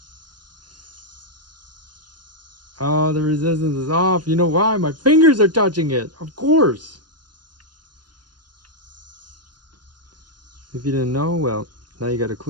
Oh, the resistance is off. You know why? My fingers are touching it. Of course. If you didn't know, well, now you got a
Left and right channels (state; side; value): late; left; 0.70 ms